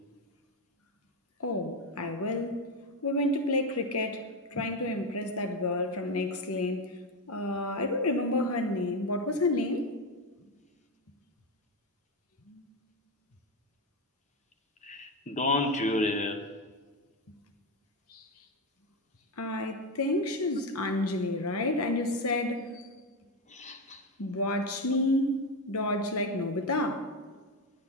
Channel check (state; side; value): normal; both; correlation 0.12